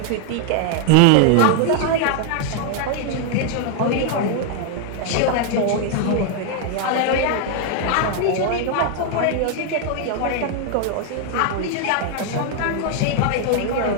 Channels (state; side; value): different; both; correlation 0.00